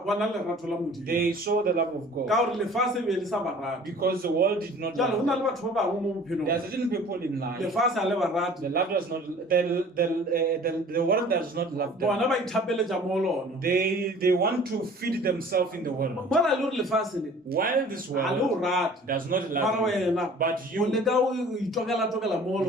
bona lerato la modimo they saw the love of ka God gore lefatshe be le sa ba rate because the world did not jale go love na them. le batho ba bangwe mo bophelong There are certain people in life, lefatshe a le ba rate the love does not, the world does not love them. bona ba ithapeletša mo lona They want to feed themselves in the world. mola le gore lefatshe le While this a le o world rate does not mara love you, wena but o you leka o itokela mo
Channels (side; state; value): both; normal; correlation 0.48